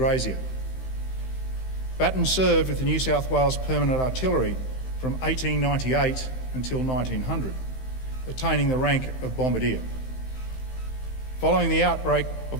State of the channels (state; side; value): late; right; 15 ms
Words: Batten served with the New South Wales Permanent Artillery from 1898 until 1900, attaining the rank of bombardier. Following the outbreak